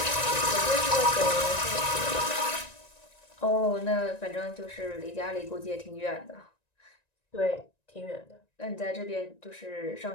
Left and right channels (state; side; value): late; right; 1.9 ms